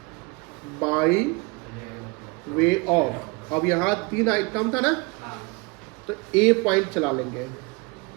by way of. अब यहाँ 3 आइटम था ना, तो ए पॉइंट चला लेंगे।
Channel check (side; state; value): left; quieter; 28.2 dB